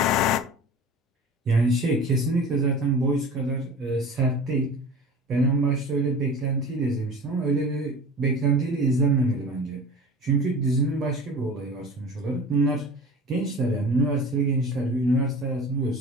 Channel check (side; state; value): both; normal; correlation 0.37